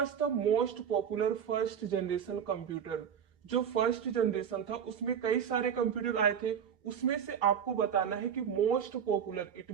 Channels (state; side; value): quieter; left; 8.0 dB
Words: the most popular first generation computer? जो फर्स्ट जनरेशन था उसमें कई सारे कंप्यूटर आए थे, उसमें से आपको बताना है कि मोस्ट पॉपुलर इट